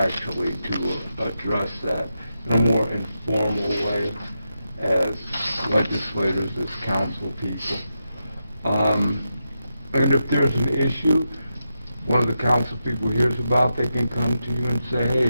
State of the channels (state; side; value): inverted; both; correlation -0.87